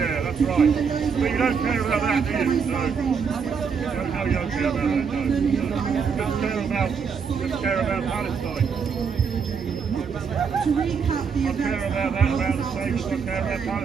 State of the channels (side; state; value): left; quieter; 6.1 dB